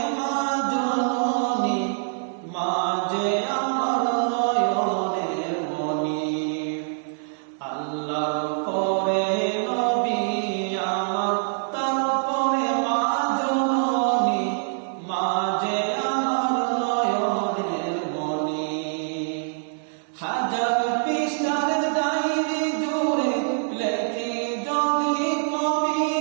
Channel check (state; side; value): silent; left; digital silence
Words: মা জননী, মা যে আমার নয়নের মণি। আল্লাহর পরে নবী আমার, তারপরে মা জননী, মা যে আমার নয়নের মণি। হাজার পৃষ্ঠার ডায়েরি জুড়ে লেখি যদি